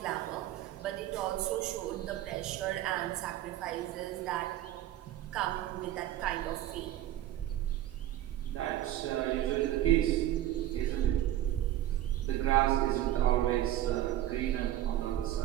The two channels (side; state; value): left; quieter; 13.1 dB